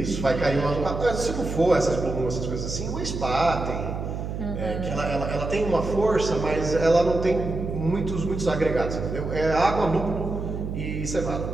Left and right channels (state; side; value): noise; right; hum, 5 dB below the sound